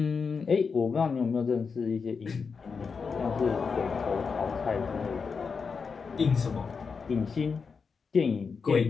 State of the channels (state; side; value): quieter; right; 5.4 dB